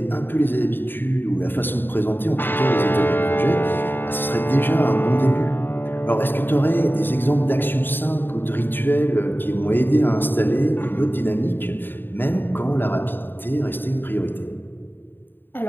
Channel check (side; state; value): right; late; 0.096 ms